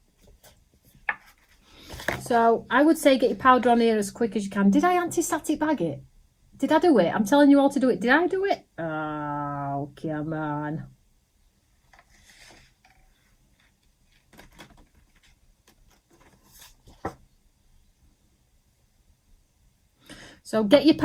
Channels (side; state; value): both; identical; correlation 1.00